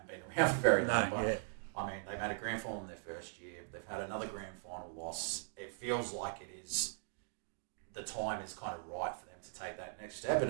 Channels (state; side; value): silent; left; digital silence